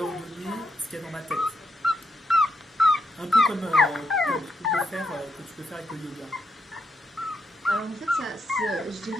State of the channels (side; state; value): both; normal; correlation 0.81